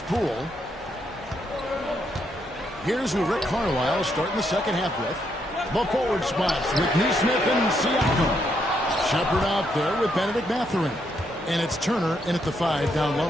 Poole. Here's who Rick Carlisle is starting the second half with. The forward spots with Neesmith and Siakam. Shepard out there with Benedict Mathurin. And it's Turner in at the 5 down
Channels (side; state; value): both; normal; correlation 0.76